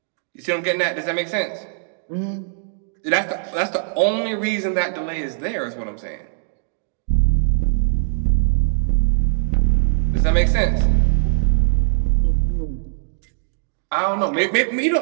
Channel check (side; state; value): left; silent; digital silence